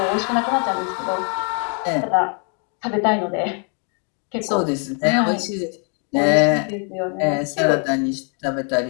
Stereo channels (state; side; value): quieter; right; 39.8 dB